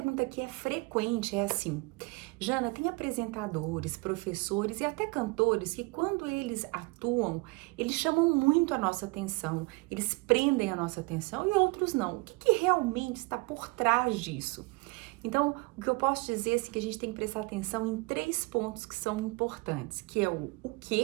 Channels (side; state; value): left; quieter; 26.7 dB